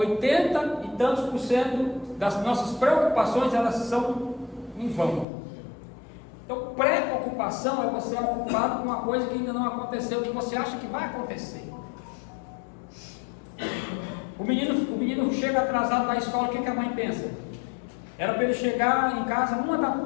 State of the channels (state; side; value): drops out; right; at 5.2 s